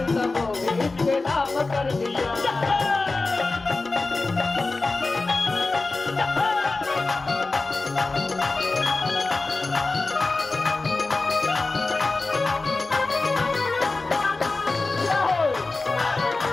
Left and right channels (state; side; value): quieter; right; 3.5 dB